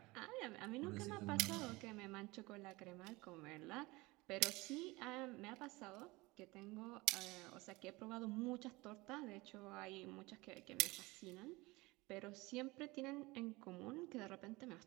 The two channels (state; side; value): quieter; left; 22.4 dB